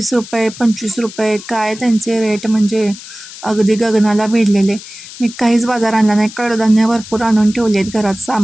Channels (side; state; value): left; noise; hiss, 15 dB below the sound